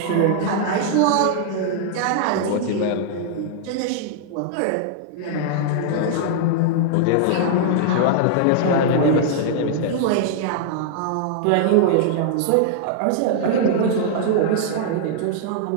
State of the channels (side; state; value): both; different; correlation -0.01